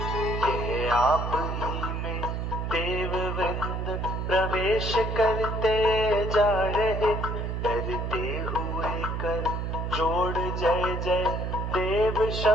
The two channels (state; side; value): noise; right; hum, 2 dB below the sound